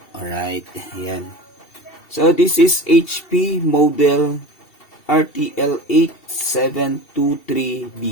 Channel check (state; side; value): late; right; 2.7 ms